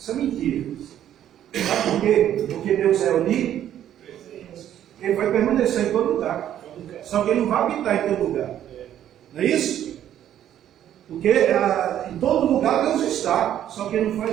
é mentira. Sabe por quê? Porque Deus é unido, Ele vai permanecer em todo lugar. Só que Ele não vai habitar em todo lugar. Não é isso? Porque em todo lugar Deus está, só que Ele não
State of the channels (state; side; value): quieter; left; 11.0 dB